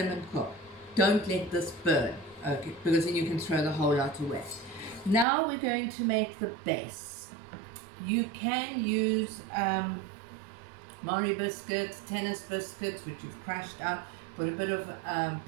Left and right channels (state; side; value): drops out; left; at 5.2 s